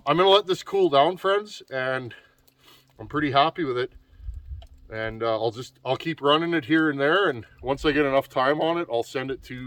going to let this cool down, friends, and I'm pretty happy with it. And I'll keep running it here and there, and once I get enough time on it, I'll send it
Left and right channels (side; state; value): both; identical; correlation 1.00